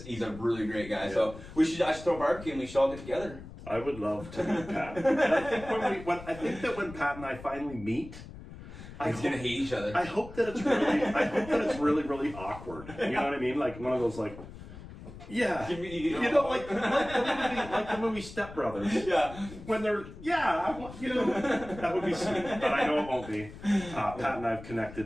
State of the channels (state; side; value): noise; left; rumble, 15 dB below the sound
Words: a really great guy. Yeah. So I should throw a barbecue, and we should all get together. I would love to meet Pat. And I think that when Pat and I finally meet, He's gonna hate each other. I hope that it's really, really awkward. You know what I mean? Like one of those like. Yeah, like the movie Step Brothers. Yeah, when they're that would be sweet, but I know it won't be. Pat and I have